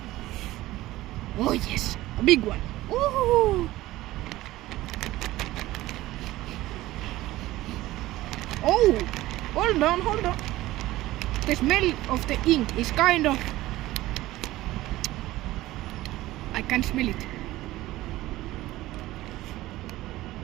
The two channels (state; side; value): quieter; left; 16.9 dB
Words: Oh yes, a big one. Woohoo! Oh, hold on. The smell of the ink is kind of. I can smell it.